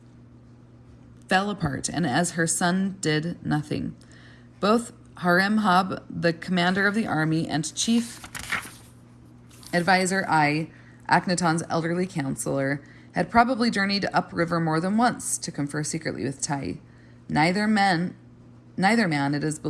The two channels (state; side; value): identical; both; correlation 1.00